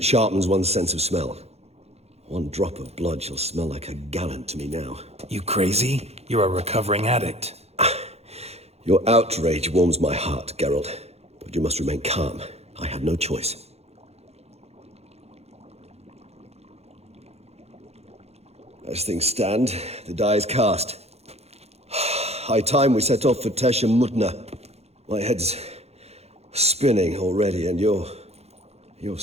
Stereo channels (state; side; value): late; left; 0.30 ms